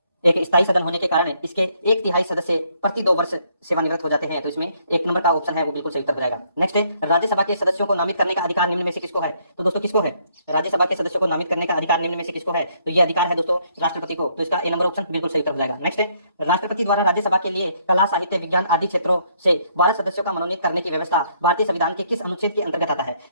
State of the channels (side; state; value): both; inverted; correlation -0.69